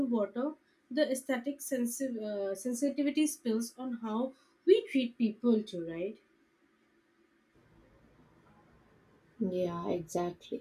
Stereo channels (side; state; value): both; identical; correlation 1.00